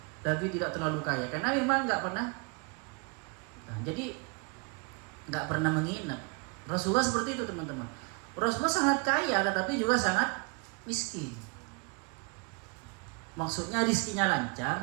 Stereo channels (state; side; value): quieter; left; 33.3 dB